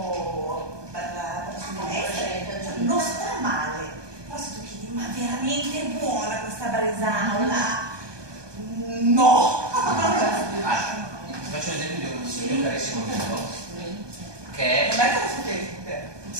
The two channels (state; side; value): late; left; 1.2 ms